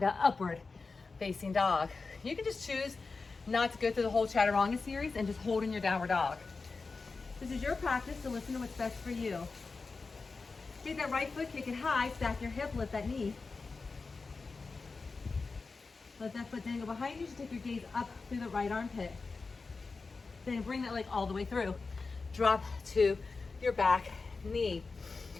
upward facing dog. You can just choose not to go through the whole chaturanga series and just hold in your downward dog. This is your practice, so listen to what's best for you. Take that right foot, kick it high, stack your hip, lift that knee. Let that foot dangle behind you. Just take your gaze up through the right armpit. Then bring that leg all the way through. Drop to your back knee.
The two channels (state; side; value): quieter; right; 4.2 dB